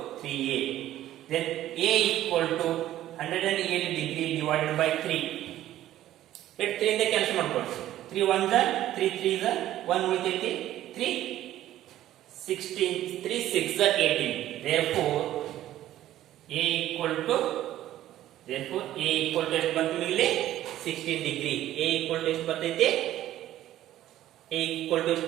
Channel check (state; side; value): quieter; left; 13.3 dB